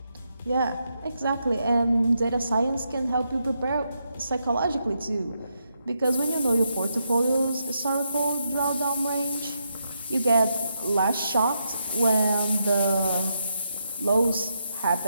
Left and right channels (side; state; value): both; inverted; correlation -0.81